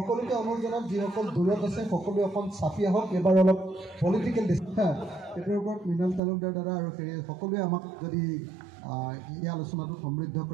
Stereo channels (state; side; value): drops out; left; at 6.2 s